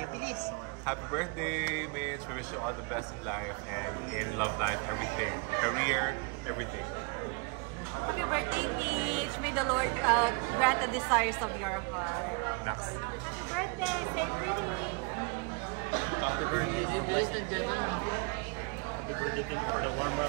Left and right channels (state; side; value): quieter; left; 32.0 dB